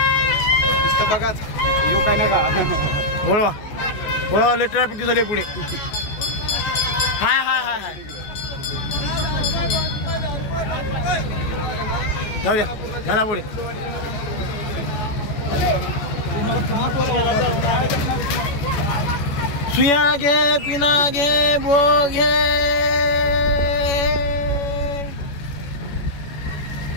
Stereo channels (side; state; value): right; late; 14 ms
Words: बघाच येऊ काय नाही का. वळवा वळवा लय ट्रॅफिक झाली पुढे. हाय हाय हाय हाय जाऊ द्या झाला पुढे. सुया घे पिना घे बो घे.